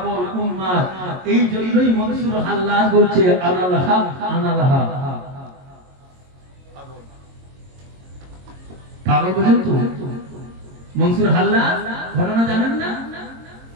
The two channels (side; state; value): left; late; 22 ms